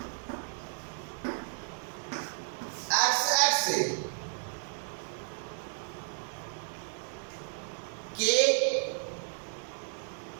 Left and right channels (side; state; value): left; silent; 56 dB below the other